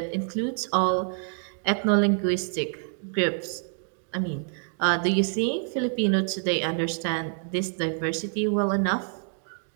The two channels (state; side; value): silent; left; 60 dB below the other